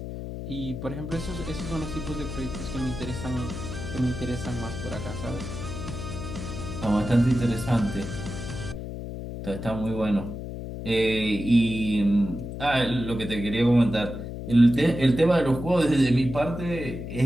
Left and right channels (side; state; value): left; noise; hum, 7 dB below the sound